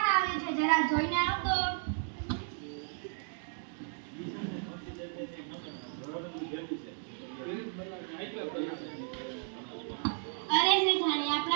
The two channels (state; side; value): silent; left; 55 dB below the other